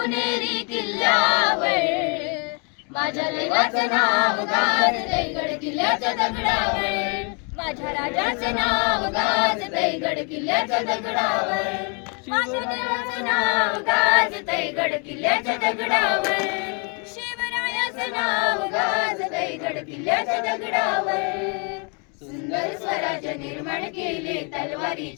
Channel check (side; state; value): right; quieter; 36.5 dB